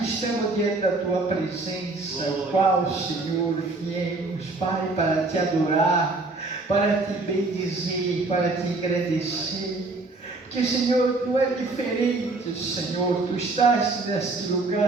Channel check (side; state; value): left; quieter; 3.4 dB